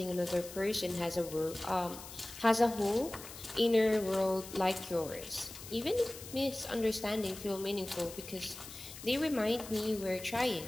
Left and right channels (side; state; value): left; noise; hiss, 13 dB below the sound